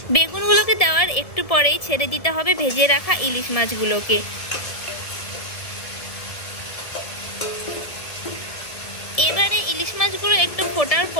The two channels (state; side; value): late; right; 1.7 ms